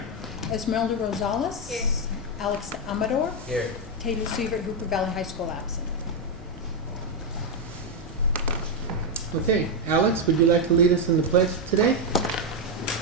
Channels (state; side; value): normal; both; correlation 0.04